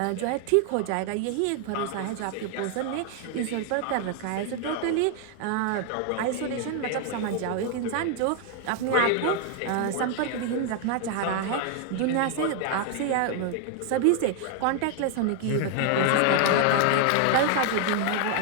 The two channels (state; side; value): different; both; correlation 0.00